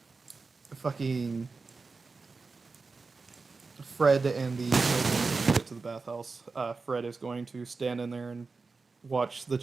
fucking Fred and the children get to the bathhouse. Fred is going to stand in there and watch the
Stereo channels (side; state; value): left; quieter; 4.2 dB